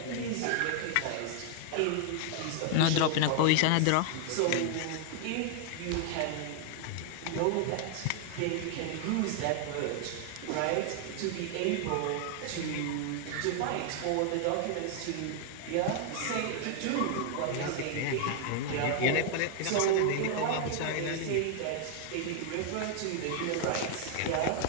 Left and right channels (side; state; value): both; different; correlation 0.00